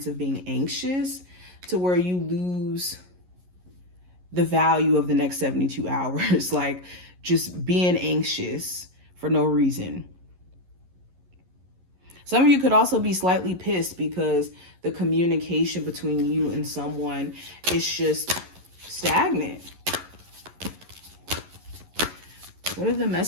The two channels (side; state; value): left; late; 11 ms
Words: of being anxious to where you lose the value of the next 72 hours, like just being anxious for no reason. Some of you could also be slightly pissed because the communication between you and someone is just stagnant. What are the